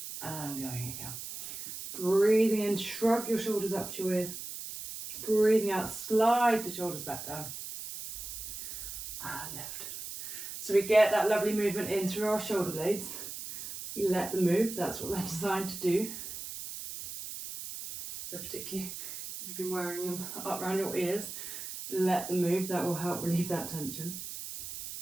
And going again. Breathing in, shrug your shoulders up to your ears. Breathing out, slide the shoulders back down. And lift. So we get that lovely movement in through our shoulder blades. You let them move, that's what they're designed to do. So particularly if you've been wearing them up around your ears, let them move, that will help relieve that tension.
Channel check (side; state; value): right; noise; hiss, 9 dB below the sound